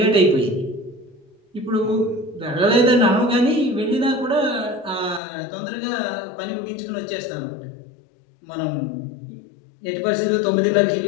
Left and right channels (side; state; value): right; drops out; at 5.2 s